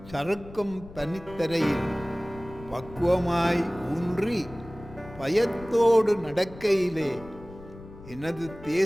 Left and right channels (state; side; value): noise; left; rumble, 17 dB below the sound